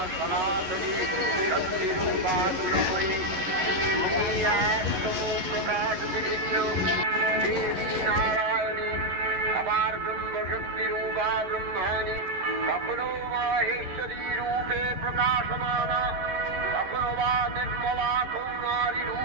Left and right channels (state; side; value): late; left; 11 ms